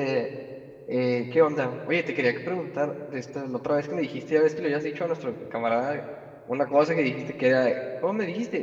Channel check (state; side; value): identical; both; correlation 1.00